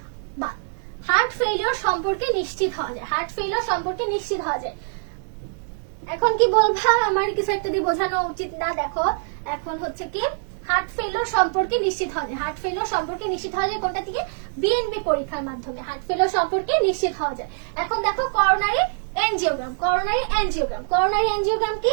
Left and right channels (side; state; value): left; silent; digital silence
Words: বা হার্ট ফেইলিওর সম্পর্কে নিশ্চিত হওয়া যায়, হার্ট ফেইলিওর সম্পর্কে নিশ্চিত হওয়া যায়। এখন কি বলবা আমার কিছু একটা দিয়ে বোঝানো উচিত না? দেখো এখন হচ্ছে কি হার্ট ফেইলিওর সম্পর্কে নিশ্চিত হওয়া যায়। হার্ট ফেইলিওর সম্পর্কে নিশ্চিত হওয়া যায় কোনটা থেকে? বিএনপি পরীক্ষার মাধ্যমে হার্ট ফেইলিওর সম্পর্কে নিশ্চিত হওয়া যায়। এখন দেখো coronary angiogram. Coronary angiogram, coronary angiogram কি